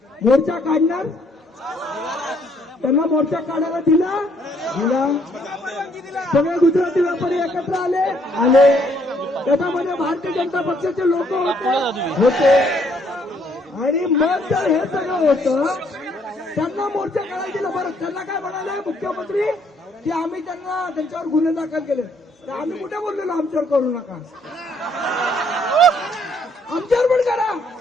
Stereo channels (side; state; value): both; normal; correlation 0.67